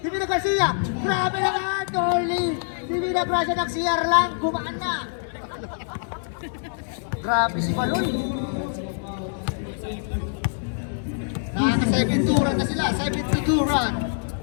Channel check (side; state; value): right; silent; digital silence